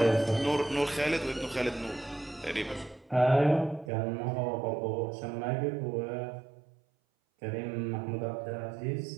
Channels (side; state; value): left; drops out; at 3.9 s